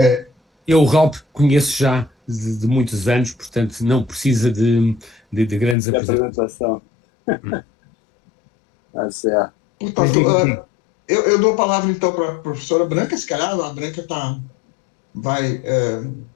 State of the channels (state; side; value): drops out; right; at 5.8 s